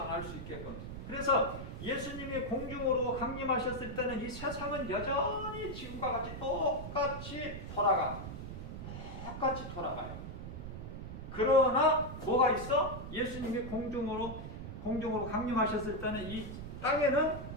알 수 있게끔. 그래서 예수님이 공중으로 강림하셨을 때는 이 세상은 여전히 지금과 같이 똑같이 돌아가요. 그러나 뭐가 있어? 예수님이 공중으로 강림하셨을 때는 이 땅에는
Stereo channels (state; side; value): noise; right; rumble, 8 dB below the sound